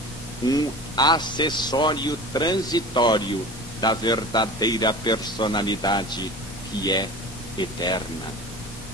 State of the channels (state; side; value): normal; both; correlation 0.36